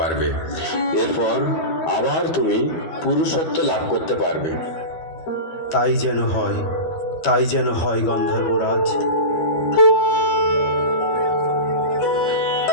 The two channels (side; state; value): right; late; 12 ms